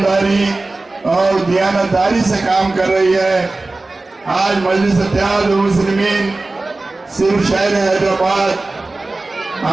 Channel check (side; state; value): left; quieter; 3.2 dB